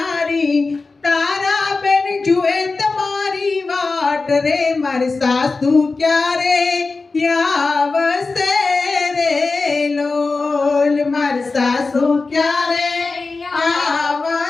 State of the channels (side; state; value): right; quieter; 3.9 dB